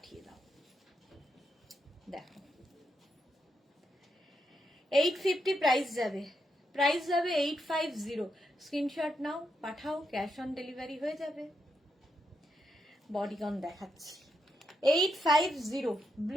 দাও। দেখো, 850 প্রাইস যাবে, প্রাইস যাবে 850। স্ক্রিনশট নাও, পাঠাও, ক্যাশ অন ডেলিভারি হয়ে যাবে। বডিকন দেখাচ্ছি, 850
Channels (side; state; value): both; normal; correlation 0.82